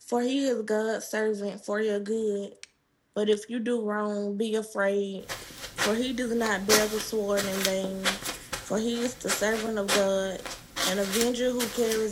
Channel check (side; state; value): both; identical; correlation 1.00